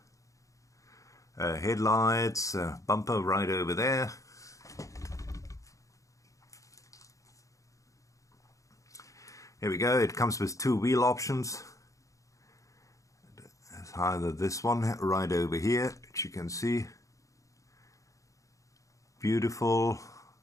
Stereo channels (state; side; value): late; right; 0.16 ms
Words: Headlights, bumper right over there. Here we go. It comes with two wheel options. It's either this one right over here, which you can see. Beautiful